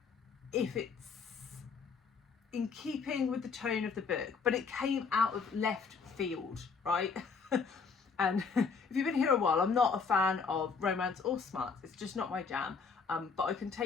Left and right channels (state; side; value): quieter; right; 5.3 dB